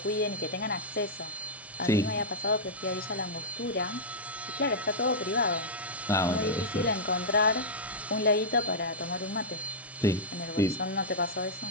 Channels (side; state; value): both; normal; correlation -0.08